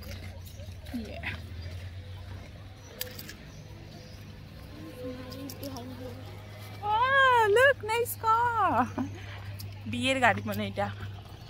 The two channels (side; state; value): both; identical; correlation 1.00